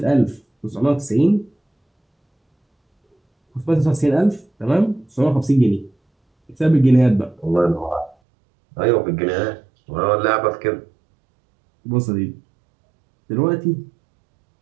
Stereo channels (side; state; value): left; drops out; at 8.2 s